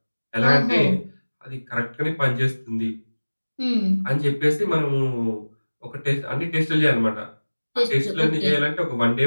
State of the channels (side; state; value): both; inverted; correlation -1.00